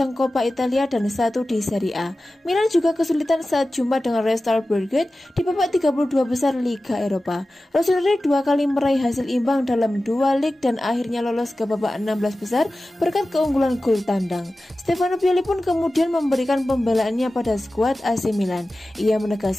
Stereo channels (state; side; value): normal; both; correlation 0.95